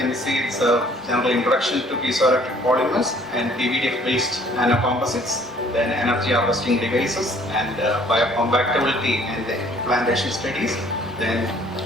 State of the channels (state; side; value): normal; both; correlation 0.58